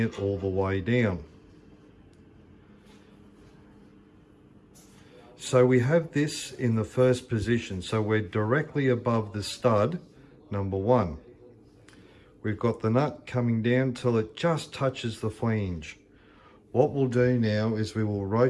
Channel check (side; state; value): both; identical; correlation 1.00